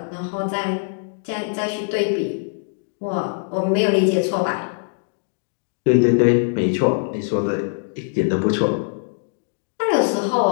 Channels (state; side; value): silent; right; digital silence